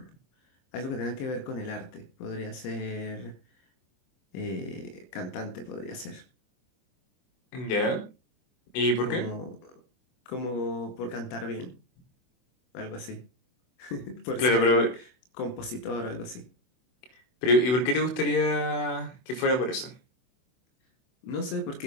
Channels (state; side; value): late; right; 24 ms